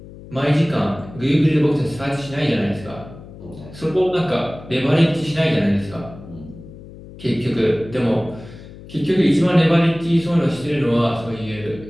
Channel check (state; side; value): noise; left; hum, 17 dB below the sound